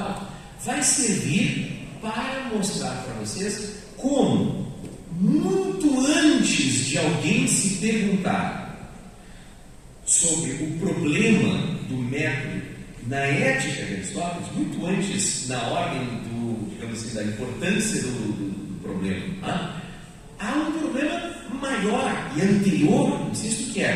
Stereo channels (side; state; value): both; identical; correlation 1.00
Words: vai servir para mostrar para vocês como, muito antes de alguém se perguntar sobre o problema do método na ética de Aristóteles, muito antes na ordem digamos assim, da importância do problema, há um problema maior e anterior, insisto, que